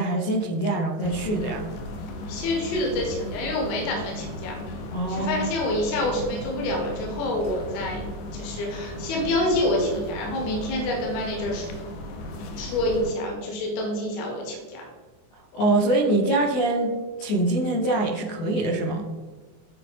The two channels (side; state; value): right; late; 24 ms